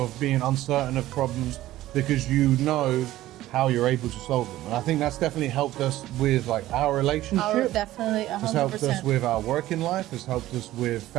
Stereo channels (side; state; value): left; quieter; 15.2 dB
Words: being uncertain of problems, because you know how you're able to solve them. And I think that's definitely helped us with like our relationship. Definitely, 100%. It's helped us with our working life. It's helped us with